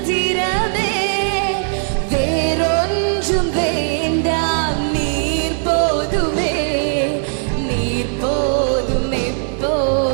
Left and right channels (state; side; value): silent; left; 67 dB below the other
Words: வேறொன்றும் வேண்டாம், நீர் போதுமே, நீர் போதும்,